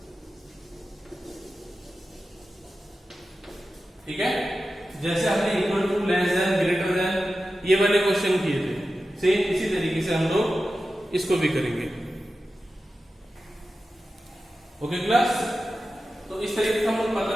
ठीक है, जैसे हमने equal to, less than, greater than ये वाले क्वेश्चन किए थे, सेम इसी तरीके से हम लोग इसको भी करेंगे। ओके क्लास, तो इस तरीके से हम लोग पता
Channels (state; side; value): normal; both; correlation 0.93